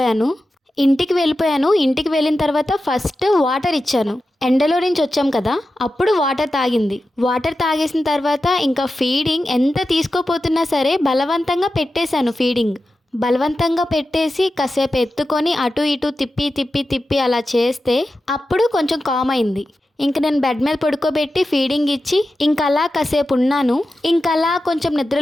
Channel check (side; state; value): both; normal; correlation 0.92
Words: ఇంటికి వెళ్ళిన తర్వాత ఫస్ట్ వాటర్ ఇచ్చాను. ఎండలో నుంచి వచ్చాం కదా, అప్పుడు వాటర్ తాగింది. వాటర్ తాగేసిన తర్వాత ఇంకా ఫీడింగ్ ఎంత తీసుకోపోతున్నా సరే బలవంతంగా పెట్టేశాను. బలవంతంగా పెట్టేసి కాసేపు ఎత్తుకొని అటు ఇటు తిప్పి అలా చేస్తే అప్పుడు కొంచెం కామ్ అయింది. ఇంక నేను బెడ్ మీద పడుకోబెట్టి ఫీడింగ్ ఇచ్చి ఇంకా అలా కాసేపు ఉన్నాను. ఇంకా అలా కొంచెం